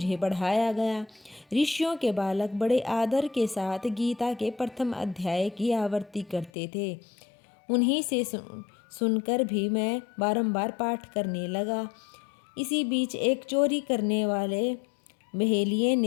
पढ़ाया गया। ऋषियों के बालक बड़े आदर के साथ गीता के प्रथम अध्याय की आवृत्ति करते थे। उन्हीं से सुनकर भी मैं बारंबार पाठ करने लगा। इसी बीच एक चोरी करने वाले बहेलिये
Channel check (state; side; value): drops out; right; at 6.5 s